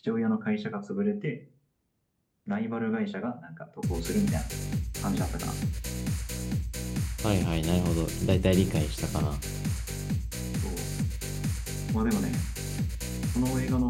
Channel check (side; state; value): both; identical; correlation 1.00